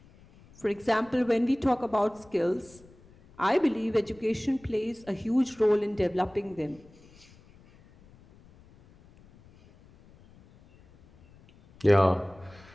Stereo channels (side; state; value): left; noise; rumble, 26 dB below the sound